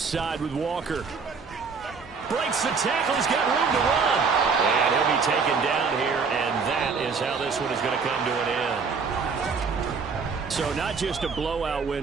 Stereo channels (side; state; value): left; quieter; 5.2 dB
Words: side with Walker. Breaks the tackle. He's got room to run. And he'll be taken down here, and that is how this one is going to come to an end. So not just a blowout